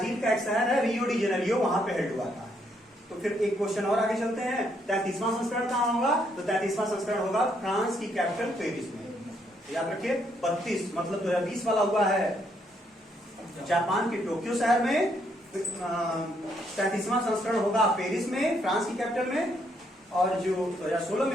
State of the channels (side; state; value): both; normal; correlation 0.73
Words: का एक शहर है रियो डी जेनेरियो, वहां पे हेल्ड हुआ था। तो फिर एक क्वेश्चन और आगे चलते हैं। 33वां संस्करण कहाँ होगा? तो 33वां संस्करण होगा फ्रांस की कैपिटल पेरिस में। याद रखिए 32 मतलब 2020 वाला हुआ है जापान के टोक्यो शहर में। 33वां संस्करण होगा पेरिस में, फ्रांस की कैपिटल में। और जो 2016 में